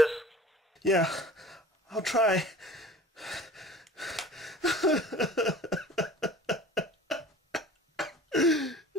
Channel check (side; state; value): both; normal; correlation 0.44